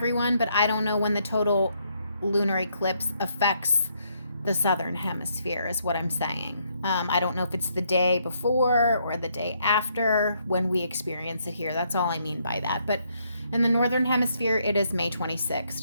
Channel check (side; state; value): both; inverted; correlation -0.73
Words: but I don't know when the total lunar eclipse affects the Southern Hemisphere is what I'm saying. I don't know if it's the day before or the day after when we experience it here. That's all I mean by that. But in the Northern Hemisphere, it is May